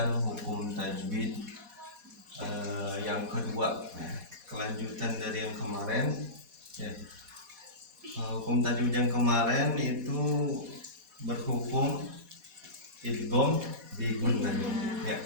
hukum tajwid yang kedua, kelanjutan dari yang kemarin. Hukum tajwid yang kemarin itu berhukum idgham bi gunnah.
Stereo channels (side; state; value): left; late; 4.1 ms